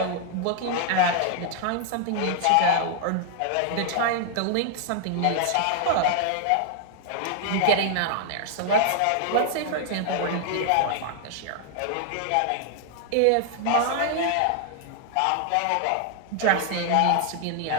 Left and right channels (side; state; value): both; different; correlation 0.00